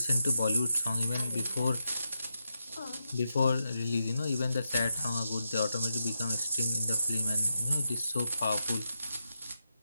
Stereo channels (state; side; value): inverted; both; correlation -0.86